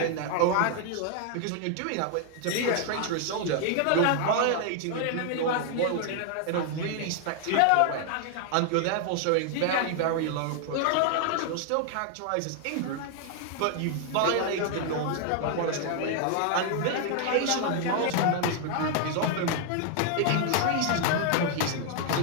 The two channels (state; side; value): different; both; correlation 0.00